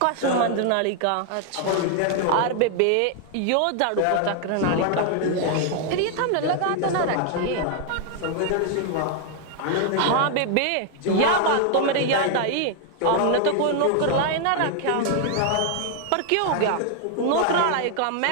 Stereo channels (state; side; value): different; both; correlation 0.00